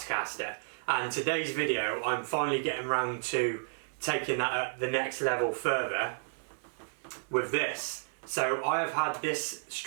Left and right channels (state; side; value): silent; left; 56 dB below the other